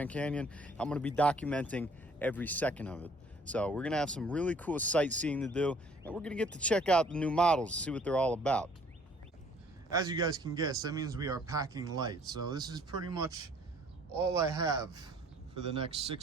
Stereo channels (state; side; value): normal; both; correlation 0.58